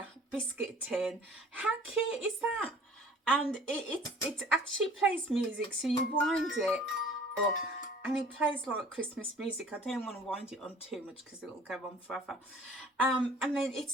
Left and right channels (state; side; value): normal; both; correlation 0.50